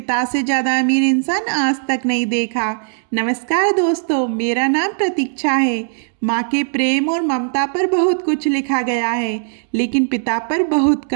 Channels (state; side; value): silent; left; digital silence